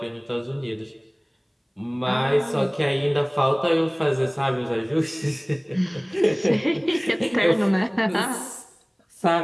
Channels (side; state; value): both; identical; correlation 1.00